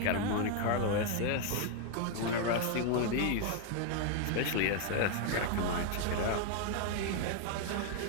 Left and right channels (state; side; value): different; both; correlation 0.00